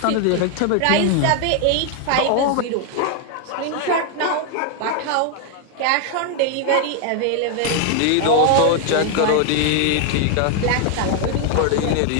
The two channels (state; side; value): different; both; correlation 0.00